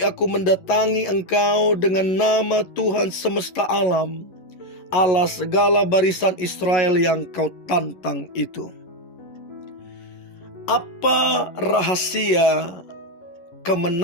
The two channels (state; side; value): late; right; 11 ms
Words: aku mendatangi engkau dengan nama Tuhan semesta alam, Allah segala barisan Israel yang kau tantang itu." Apa rahasia